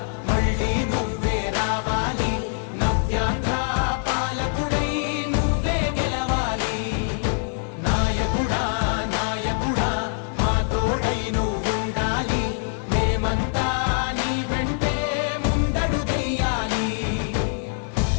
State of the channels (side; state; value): right; silent; digital silence